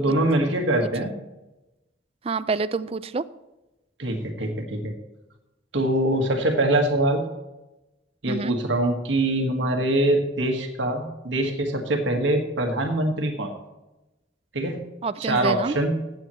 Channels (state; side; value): normal; both; correlation 0.32